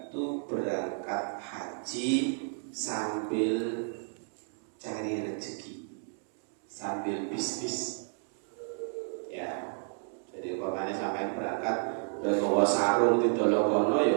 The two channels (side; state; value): left; silent; 57 dB below the other